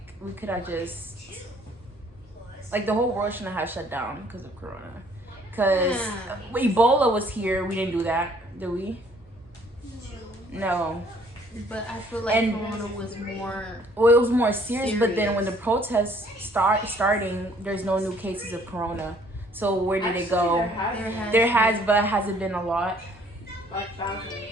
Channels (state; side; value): normal; both; correlation 0.60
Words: we could have just, like the whole world shouldn't have shut down because of Corona. Because Ebola was here, we didn't do that, did we? No. But I feel like Corona was more. Well, it was more serious, but then when the protests starting, there's no new cases of Corona. So where did it go? There has, but hasn't been a lot. Like thousands.